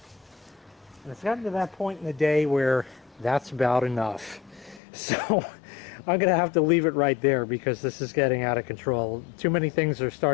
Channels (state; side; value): drops out; right; at 4.8 s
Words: And it's gotten to that point in the day where that's about enough. So I'm going to have to leave it right there because this is getting out of control. Too many things are